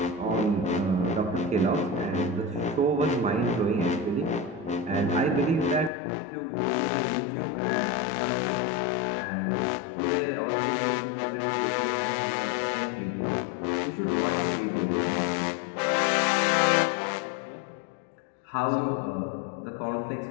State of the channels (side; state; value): right; drops out; at 5.9 s